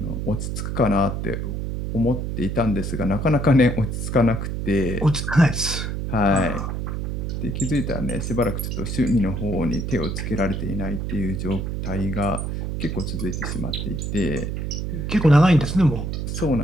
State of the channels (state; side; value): noise; right; hum, 3 dB below the sound